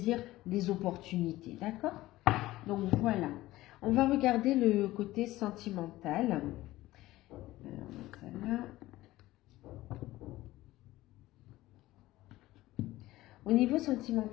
les opportunités. D'accord? Donc voilà. On va regarder le côté sentimental. Au niveau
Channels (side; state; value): right; quieter; 17.0 dB